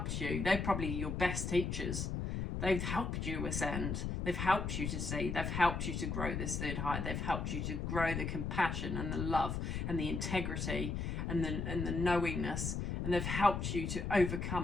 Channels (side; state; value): left; noise; rumble, 2 dB below the sound